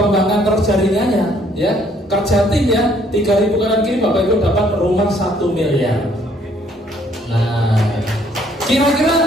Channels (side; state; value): both; normal; correlation 0.64